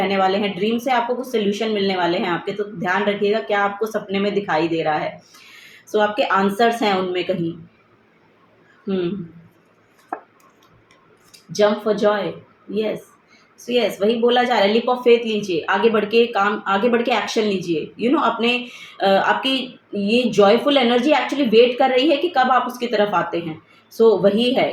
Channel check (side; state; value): both; identical; correlation 1.00